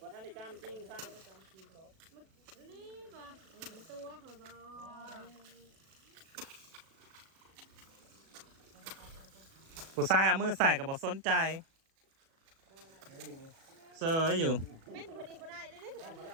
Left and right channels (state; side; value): late; left; 37 ms